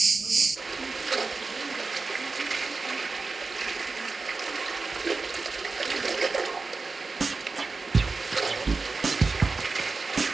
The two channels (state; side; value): quieter; left; 4.1 dB